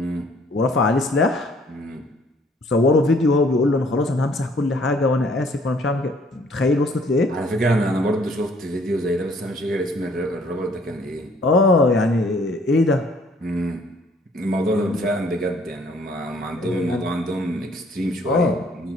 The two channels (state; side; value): normal; both; correlation 0.61